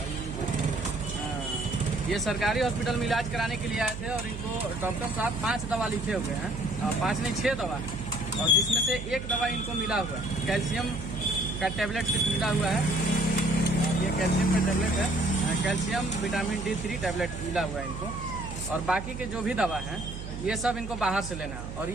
ये सरकारी हॉस्पिटल में इलाज कराने के लिए आए थे और इनको डॉक्टर साहब 5 दवा लिखे हुए हैं। 5 नहीं 6 दवा है, और जिसमें से एक दवा इनको मिला हुआ है, कैल्शियम का टैबलेट मिला हुआ है। ये कैल्शियम का टैबलेट है, कैल्शियम विटामिन D3 टैबलेट मिला हुआ है इनको। और बाकी के जो भी दवा है ये सब इनको बाहर से लेना है। और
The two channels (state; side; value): noise; right; hum, 9 dB below the sound